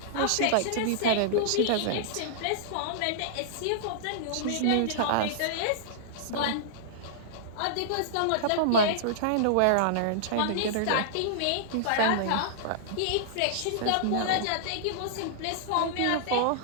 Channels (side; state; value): both; different; correlation -0.01